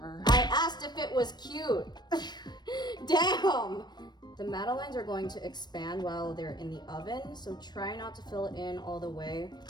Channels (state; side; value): late; right; 0.21 ms